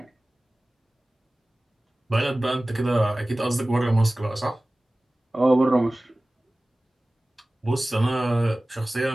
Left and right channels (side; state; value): both; normal; correlation 0.98